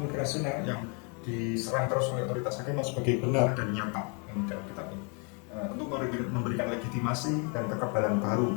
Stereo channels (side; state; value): right; quieter; 35.9 dB